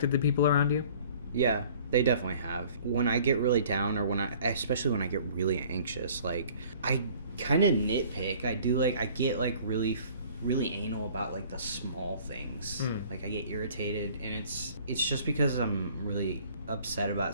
the people around you? Yeah, they definitely have. When I get really down, or especially when I get really anxious, like, I kind of nitpick. I get like really, really anal about like the small things. Like, I get irritated, and it's just because I'm really upset about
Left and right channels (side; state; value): both; inverted; correlation -0.52